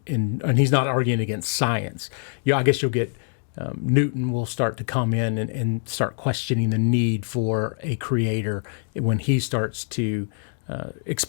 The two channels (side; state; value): right; silent; digital silence